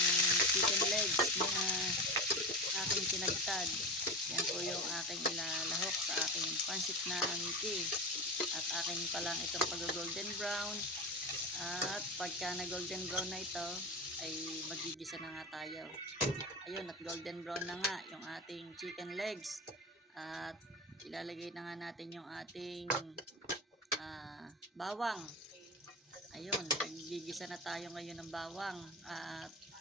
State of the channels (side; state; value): both; normal; correlation 0.23